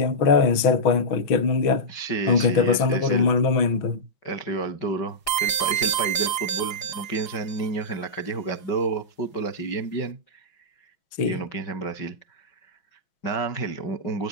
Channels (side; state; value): right; late; 6.2 ms